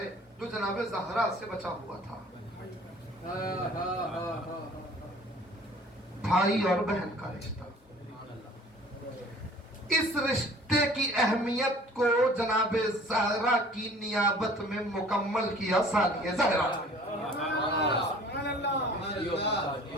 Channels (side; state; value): both; normal; correlation 0.49